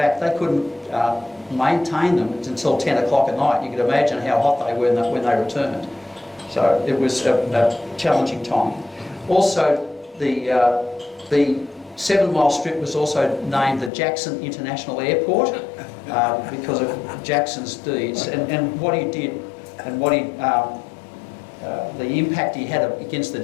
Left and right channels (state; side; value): drops out; right; at 13.9 s